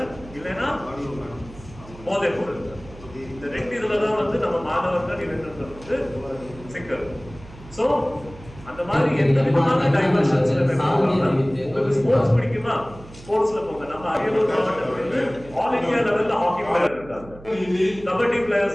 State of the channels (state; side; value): noise; right; hum, 18 dB below the sound